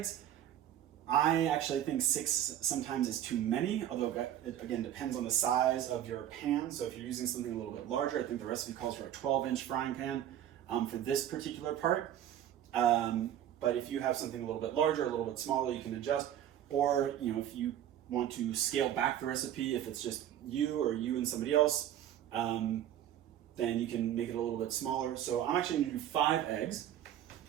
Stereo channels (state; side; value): quieter; left; 11.2 dB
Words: I actually think 6 sometimes is too many, although it again depends on the size of your pan. So if you're using something a little bit larger, I think the recipe calls for a 12-inch frying pan for this particular part. But if you have something a little bit larger, a little bit smaller, you can adjust. Or if you want to scale back the recipe, if it's just you and somebody else, then you can make it a little bit smaller. So I'm actually going to do 5 eggs,